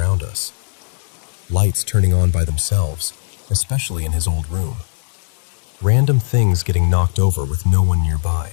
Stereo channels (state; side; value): silent; right; digital silence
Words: us. Lights turning on by themselves, especially in his old room. Random things getting knocked over with no one